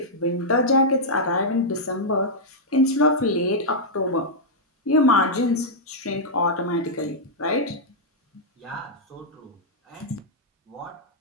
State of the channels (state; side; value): normal; both; correlation -0.07